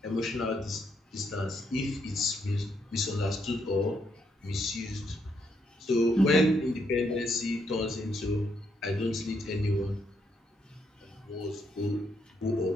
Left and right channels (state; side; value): normal; both; correlation 0.76